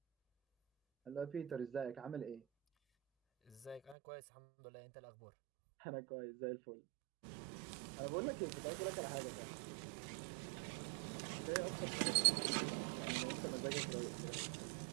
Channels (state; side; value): drops out; left; at 4.0 s